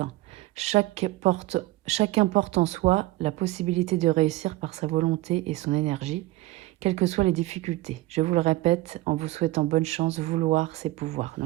Chacun porte en soi la possibilité de réussir par sa volonté et son énergie, quelles que soient les difficultés. Je vous le répète, en vous souhaitant bonne chance, vouloir c'est pouvoir.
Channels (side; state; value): left; quieter; 18.3 dB